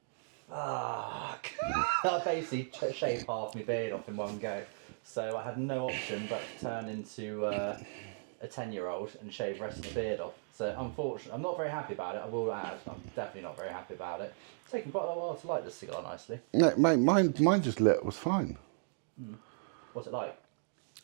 fuck. I basically shaved half my beard off in one go. So I had no option but to turn into a 10-year-old and shave the rest of my beard off. So unfortunately, I'm not very happy about it, I will add. I'm definitely not very happy about it. It's taken quite a while to light this cigar nicely. No, mate, mine just lit, was fine. What's it like?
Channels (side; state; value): left; silent; digital silence